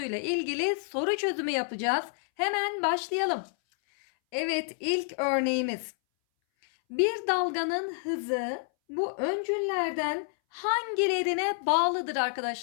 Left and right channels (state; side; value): silent; right; 59 dB below the other